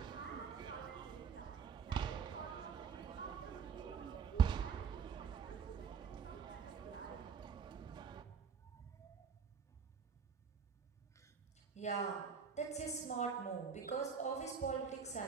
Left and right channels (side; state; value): left; quieter; 6.2 dB